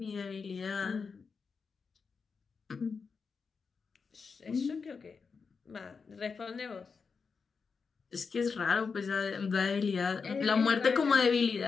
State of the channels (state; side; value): quieter; right; 5.2 dB